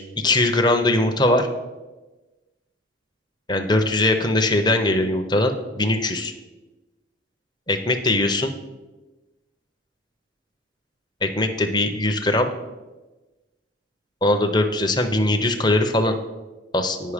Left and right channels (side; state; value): both; normal; correlation 0.42